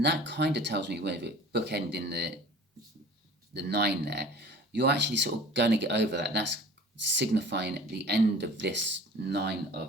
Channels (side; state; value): both; normal; correlation 0.44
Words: that kind of tells me, with it bookending the 9 there, you're actually sort of going to get over that. That's signifying the end of this 9